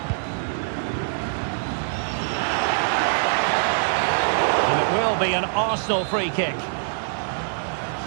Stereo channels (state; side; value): silent; left; digital silence